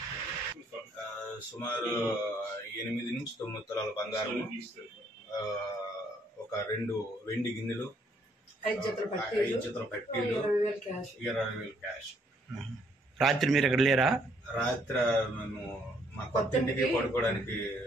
సుమారు 8 నుంచి 9 తులాల బంగారం, ఒక 2 వెండి గిన్నెలు, 5 జతల పట్టీలు, 20,000 క్యాష్. రాత్రి మీరు ఎక్కడ లేరా? రాత్రి మేము మా కొత్త ఇంటికి పడుకోవడానికి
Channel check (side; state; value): both; normal; correlation 0.68